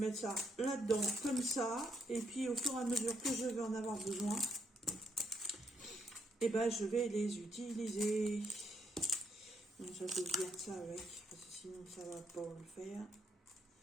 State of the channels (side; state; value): both; normal; correlation 0.74